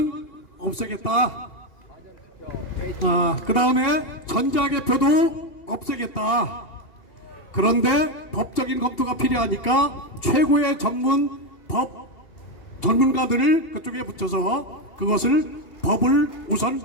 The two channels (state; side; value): late; right; 2.8 ms